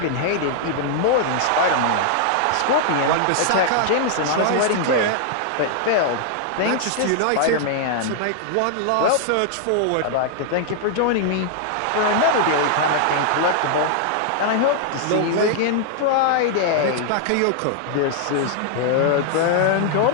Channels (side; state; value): both; different; correlation -0.01